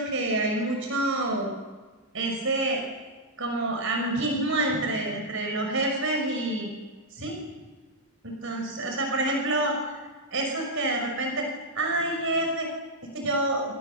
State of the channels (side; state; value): both; normal; correlation -0.04